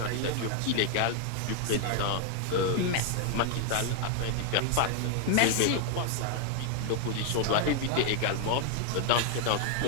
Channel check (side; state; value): both; different; correlation 0.00